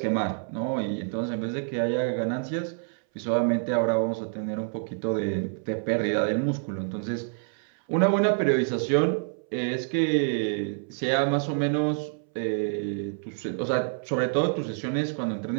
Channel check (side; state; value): left; silent; 60 dB below the other